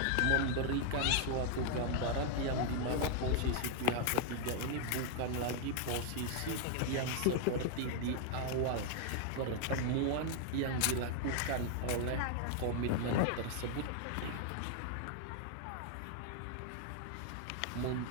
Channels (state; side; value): different; both; correlation 0.00